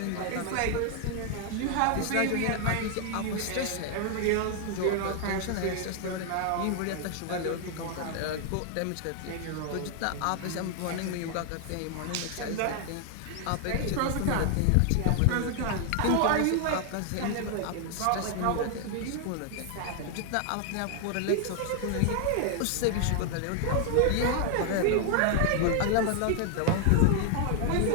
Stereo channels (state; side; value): different; both; correlation 0.00